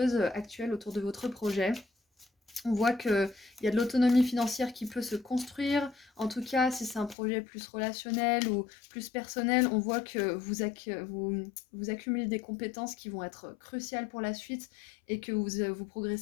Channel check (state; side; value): drops out; right; at 7.2 s